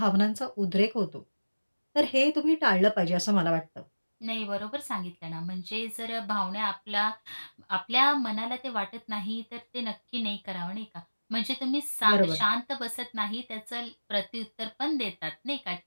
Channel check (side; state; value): both; inverted; correlation -1.00